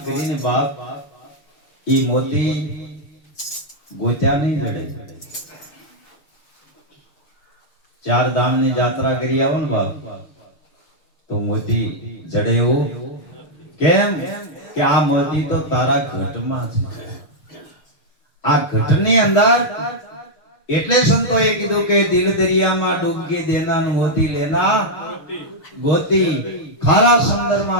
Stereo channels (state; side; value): late; right; 6.7 ms